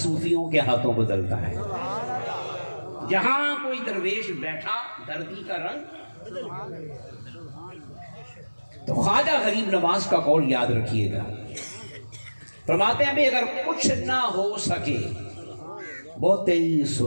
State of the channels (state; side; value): inverted; both; correlation -1.00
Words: کے ہاتھوں بدلتا ہے۔ جہاں کوئی درویش بیٹھا دھرتی کا رنگ۔ تو خواجہ غریب نواز کا قول یاد رکھیے گا، فرماتے ہیں اگر کچھ نہ ہو سکے بہت ہی